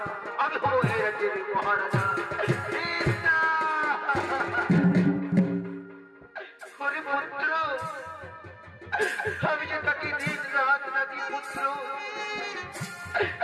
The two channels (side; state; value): both; identical; correlation 1.00